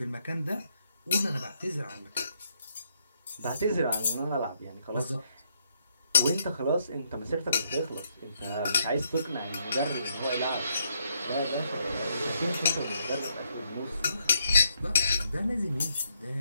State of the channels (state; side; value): inverted; both; correlation -0.75